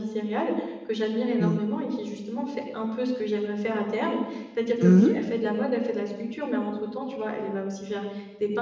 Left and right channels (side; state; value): both; identical; correlation 1.00